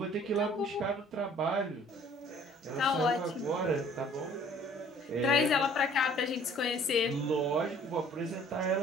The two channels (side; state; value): both; normal; correlation 0.54